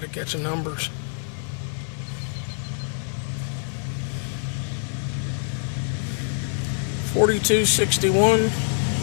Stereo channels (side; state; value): right; silent; 62 dB below the other